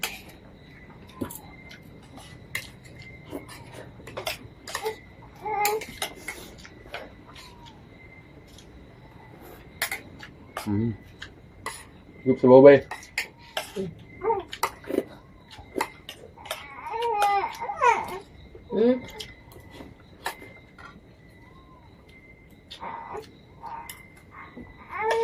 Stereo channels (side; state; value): both; identical; correlation 1.00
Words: Gup sa babay.